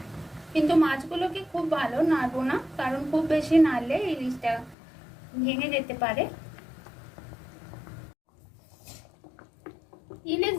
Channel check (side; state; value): right; drops out; at 4.8 s